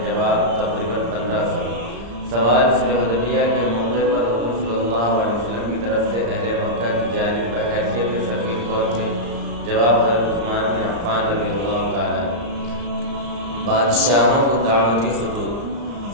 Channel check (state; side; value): late; left; 34 ms